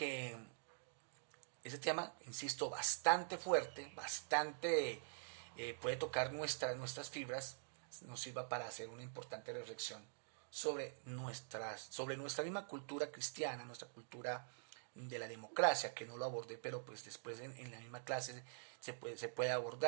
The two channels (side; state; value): left; silent; digital silence